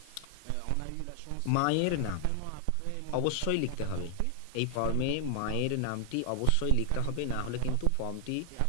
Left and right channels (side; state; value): both; different; correlation 0.00